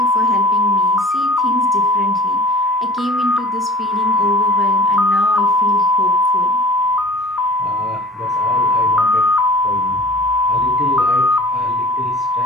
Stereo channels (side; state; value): both; normal; correlation 0.45